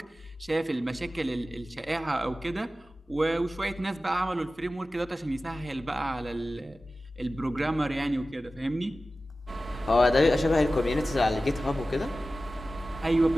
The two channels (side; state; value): both; normal; correlation 0.95